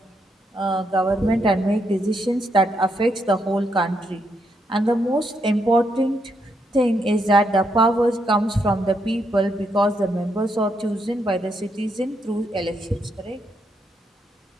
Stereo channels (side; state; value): both; normal; correlation 0.78